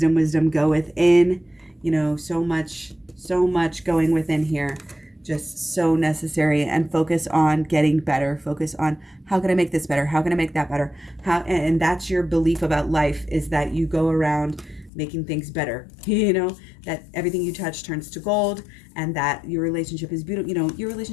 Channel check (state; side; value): drops out; right; at 14.9 s